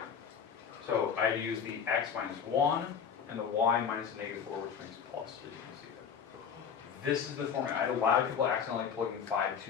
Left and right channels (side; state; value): right; quieter; 7.2 dB